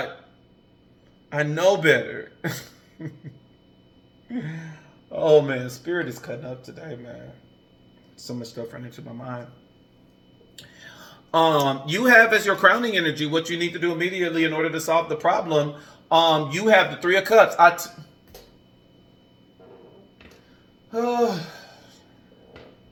I know better. Oh, man. Spirit is cutting up today, man. So much stuff running into my mind. You have as your crowning energy what you need to do immediately in order to solve the problem. You have the Three of Cups.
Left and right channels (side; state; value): both; identical; correlation 1.00